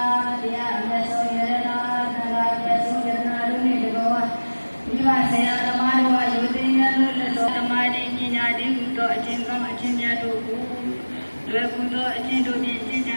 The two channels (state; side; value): inverted; both; correlation -1.00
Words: တရားမြတ်စွာဘုရားသံဃာမြတ်စွာဘုရားတို့နှင့်တကောမိဘဆရာသမားတို့အယုဒ္ဓဉာဏ်တို့လက်တော်သမာဓိပညာတည်ဟူသောအခြင်းကောင်းအခြင်းများတို့ကိုလွယ်ကူသောအခြင်းတို့ဖြင့်ရှင်းကြံ